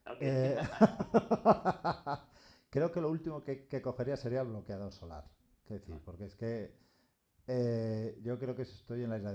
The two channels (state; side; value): identical; both; correlation 1.00